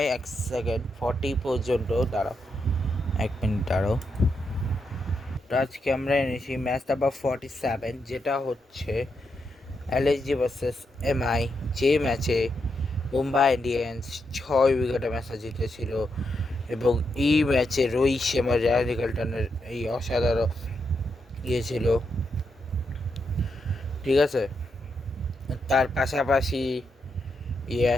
1 সেকেন্ড 40 পর্যন্ত দাঁড়াও, 1 মিনিট দাঁড়াও। তো আজকে আমরা এনেছি ম্যাচ নাম্বার 47, যেটা হচ্ছে এলএসজি ভার্সেস এমআই, যে ম্যাচে মুম্বাই ইন্ডিয়ান্স 6 উইকেটে ম্যাচটা জিতেছিল। এবং এই ম্যাচে রোহিত শর্মা, রায়ান নিকলটনের এই অসাধারণ ছিল। ঠিক আছে, তার পাশাপাশি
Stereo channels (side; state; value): both; normal; correlation 0.83